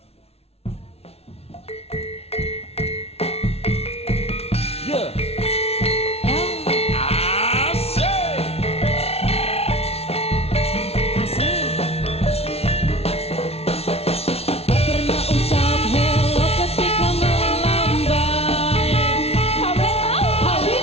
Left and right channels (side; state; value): right; late; 0.30 ms